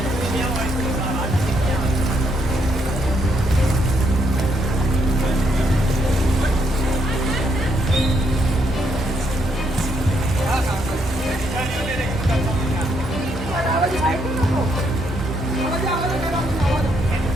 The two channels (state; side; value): normal; both; correlation 0.74